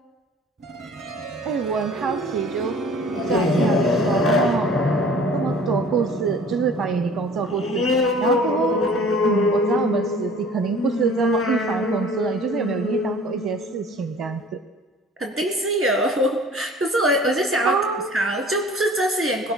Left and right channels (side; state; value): both; normal; correlation 0.48